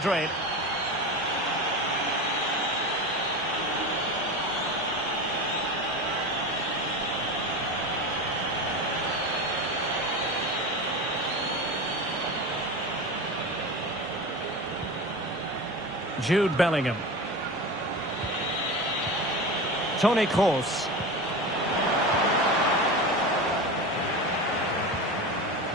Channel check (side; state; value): both; normal; correlation 0.27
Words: Jude Bellingham. Toni Kroos.